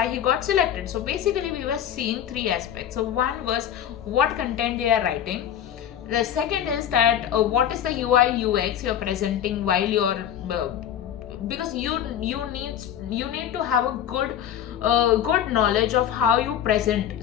he got selected. So basically, we were seeing 3 aspects. So one was what content they are writing. The second is that what is the UI UX you're presenting while you're because you need to have a good knowledge of how you present.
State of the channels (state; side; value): quieter; right; 9.9 dB